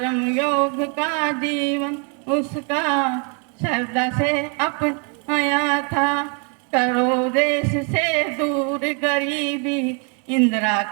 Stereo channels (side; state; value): left; quieter; 37.4 dB